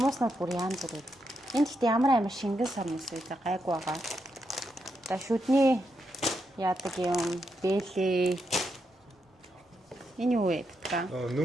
бүр янз бүр. Энд гэхдээ ямар амар шингэн сормоос үү гайгүй байгаа. За шүдний яадаг юм бэлээ. Энэ юу вэ битга?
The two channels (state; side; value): normal; both; correlation 0.82